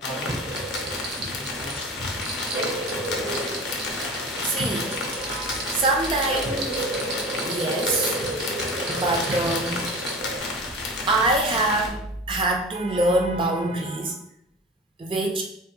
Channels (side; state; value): both; normal; correlation 0.33